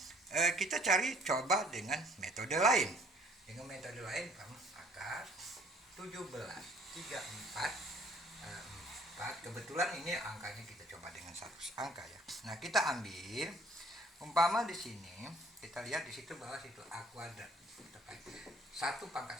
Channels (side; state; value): both; normal; correlation 0.58